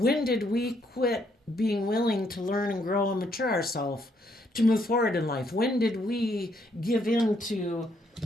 did we quit being willing to learn and grow and mature ourselves to move forward in life? When did we give in to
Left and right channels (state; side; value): normal; both; correlation 0.72